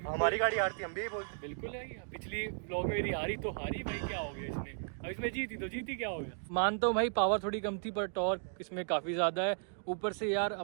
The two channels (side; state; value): left; silent; digital silence